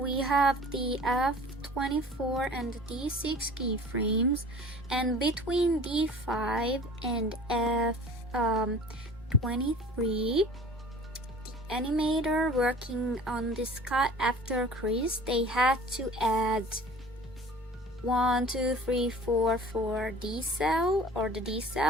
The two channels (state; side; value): normal; both; correlation 0.44